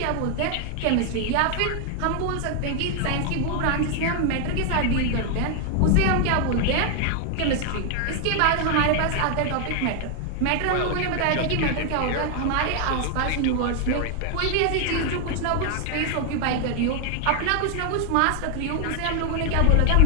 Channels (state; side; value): different; both; correlation 0.00